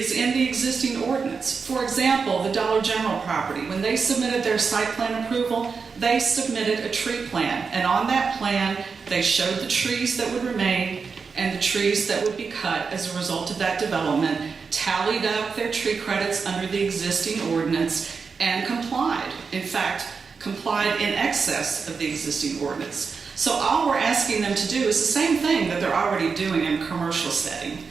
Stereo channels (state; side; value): quieter; left; 5.2 dB